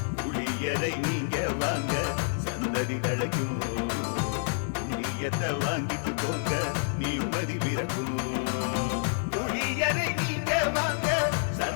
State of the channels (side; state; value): right; silent; 59 dB below the other